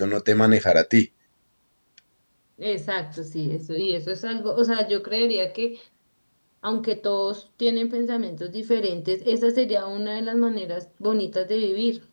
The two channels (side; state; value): both; inverted; correlation -1.00